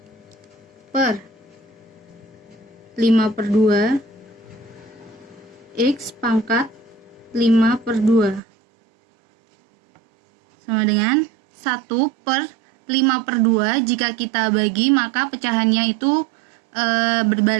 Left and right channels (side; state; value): left; drops out; at 8.4 s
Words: X pangkat 5/2 sama dengan 1/5/2. Jika kita bagi maka pecahannya itu